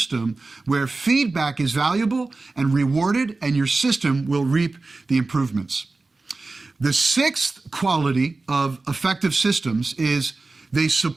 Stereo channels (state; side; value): quieter; left; 3.5 dB